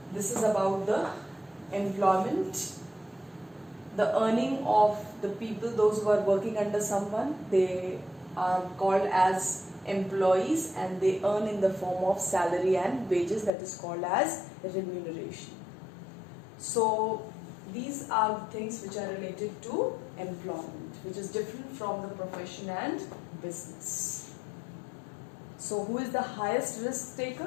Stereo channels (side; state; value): right; drops out; at 13.5 s